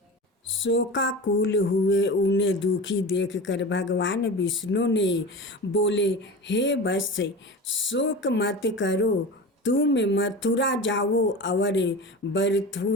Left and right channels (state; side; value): normal; both; correlation 0.31